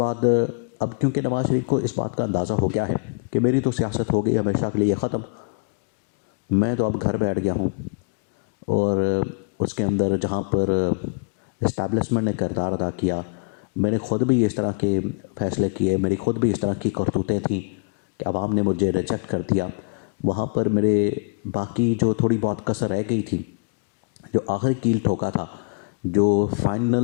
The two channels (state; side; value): quieter; right; 36.3 dB